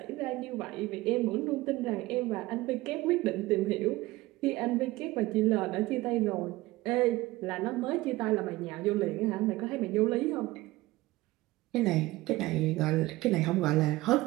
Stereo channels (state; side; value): quieter; left; 18.9 dB